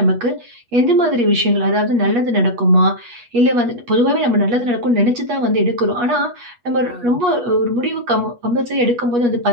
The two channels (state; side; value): late; left; 8.3 ms